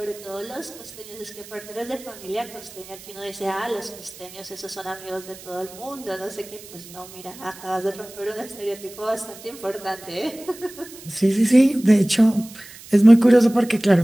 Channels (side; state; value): right; noise; hiss, 18 dB below the sound